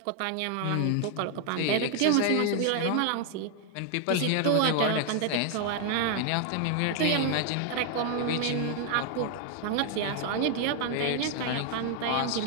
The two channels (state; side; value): different; both; correlation 0.00